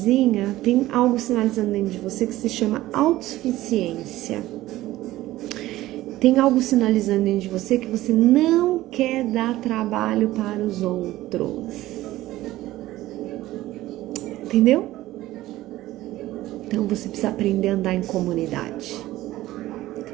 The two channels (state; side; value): quieter; left; 16.1 dB